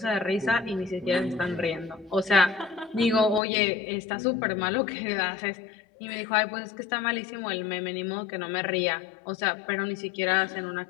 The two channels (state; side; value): drops out; right; at 3.4 s